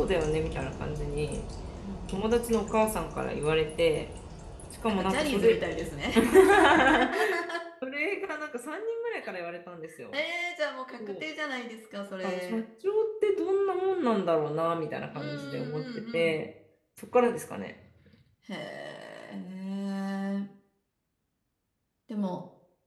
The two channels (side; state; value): both; identical; correlation 1.00